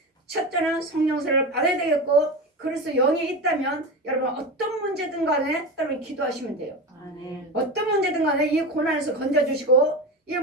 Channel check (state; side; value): normal; both; correlation 0.23